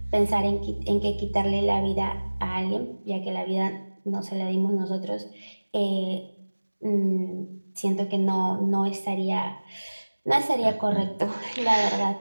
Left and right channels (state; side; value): inverted; both; correlation -1.00